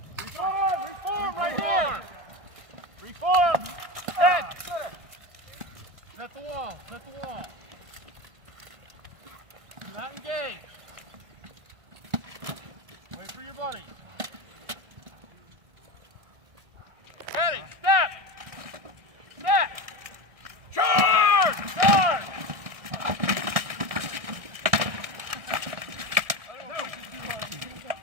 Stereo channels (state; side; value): late; left; 1.7 ms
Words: Reform! Reform right here! Reform! Set! Set the wall. Set the wall. Do not engage. Wait for your buddy. Ready, step! Step! Charge! Charge!